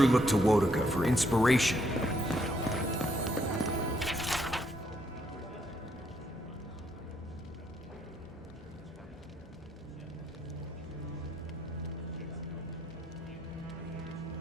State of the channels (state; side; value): normal; both; correlation 0.72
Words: looked to Wodaka for inspiration.